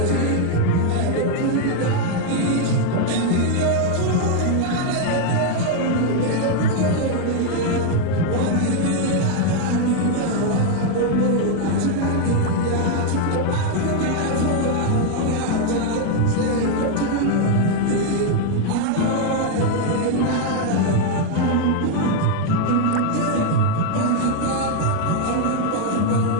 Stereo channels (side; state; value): both; different; correlation 0.00